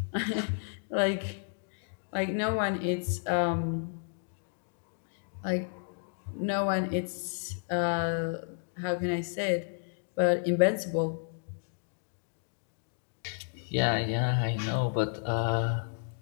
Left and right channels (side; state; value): right; silent; digital silence